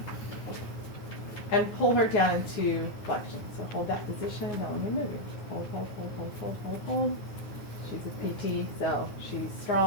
and pull her down into flexion. So hold that position. Don't let me move you. Hold, hold, hold, hold, hold, hold, hold. She's a PT, so she's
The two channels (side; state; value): right; late; 9.4 ms